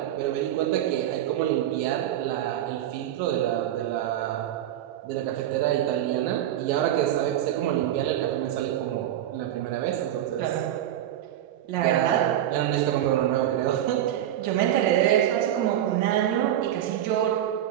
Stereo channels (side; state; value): left; quieter; 11.9 dB